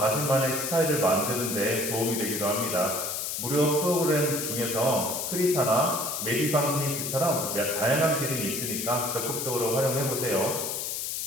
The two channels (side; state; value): left; noise; hiss, 3 dB below the sound